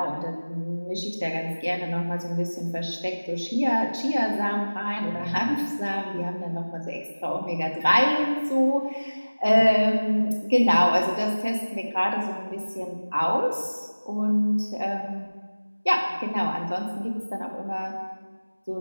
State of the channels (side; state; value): both; inverted; correlation -1.00